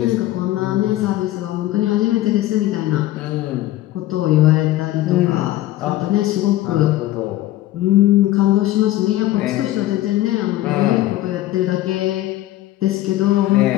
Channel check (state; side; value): quieter; right; 15.3 dB